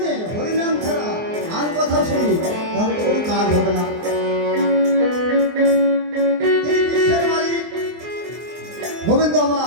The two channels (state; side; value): late; left; 24 ms